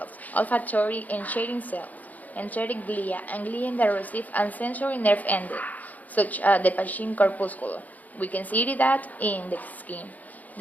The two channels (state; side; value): late; right; 0.079 ms